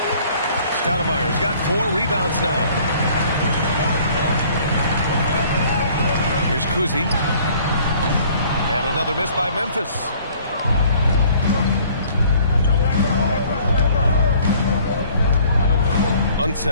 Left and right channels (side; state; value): both; inverted; correlation -0.55